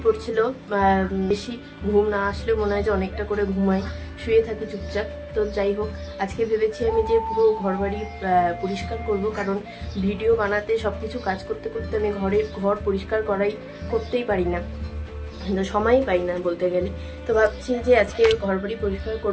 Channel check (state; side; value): identical; both; correlation 1.00